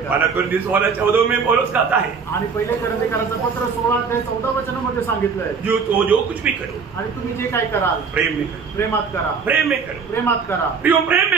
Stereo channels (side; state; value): left; quieter; 5.5 dB